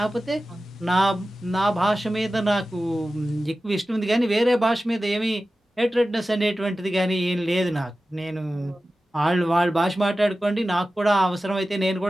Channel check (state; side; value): normal; both; correlation 0.95